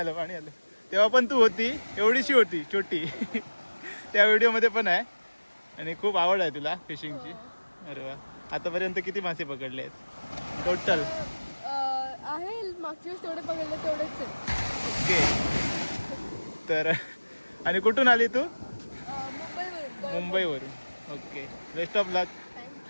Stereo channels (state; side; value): inverted; both; correlation -1.00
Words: तेव्हा पण तू होती, एवढीशी होती छोटी. त्या व्हिडिओमध्ये पण आहे. आणि खूप आवड आहे तुला फिशिंगची. अरे वा. आतापर्यंत किती मासे पकडले आहेत टोटल? आहे मागच्या वेळेस तेवढे पकडले तेवढेच आहे. ओके. तर आणि कुठून आली तू? मुंबईवरून. मुंबईवरून. ओके, बेस्ट ऑफ लक.